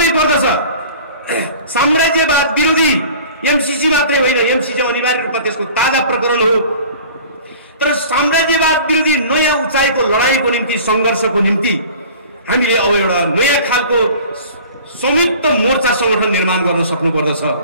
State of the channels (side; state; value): both; inverted; correlation -0.44